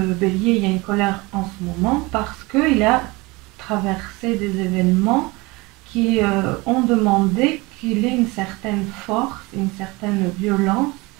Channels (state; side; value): quieter; left; 23.9 dB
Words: bélier, il y a une colère en ce moment parce qu'il a traversé des événements qui ont demandé qu'il ait une certaine force, une certaine violence,